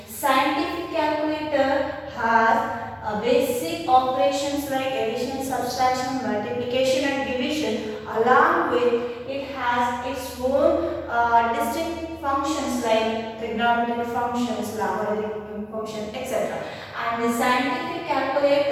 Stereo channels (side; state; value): both; identical; correlation 1.00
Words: Scientific calculator has basic operations like addition, subtraction, multiplication and division. Along with it has its own distinct functions like trigonometric functions, logarithmic function, etc. And the scientific